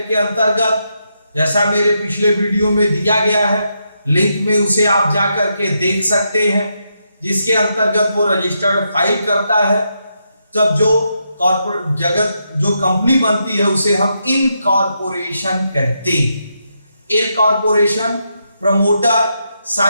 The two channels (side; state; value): both; inverted; correlation -0.82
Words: के अंतर्गत, जैसा मेरे पिछले वीडियो में दिया गया है, लिंक में उसे आप जा करके देख सकते हैं, जिसके अंतर्गत वो रजिस्टर्ड फाइल करता है। तब जो कॉर्पोरेट जगत जो कंपनी बनती है उसे हम इनकॉर्पोरेशन कहते हैं। इनकॉर्पोरेशन प्रमोटर